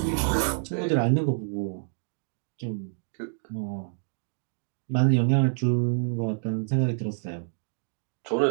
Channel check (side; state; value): left; silent; digital silence